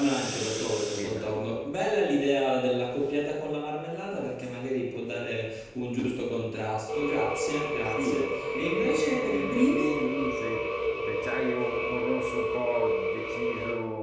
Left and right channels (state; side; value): identical; both; correlation 1.00